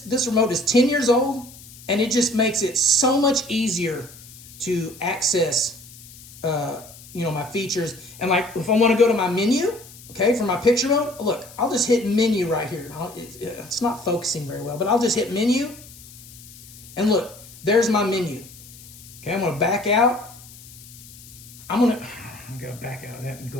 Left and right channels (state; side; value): noise; left; hiss, 19 dB below the sound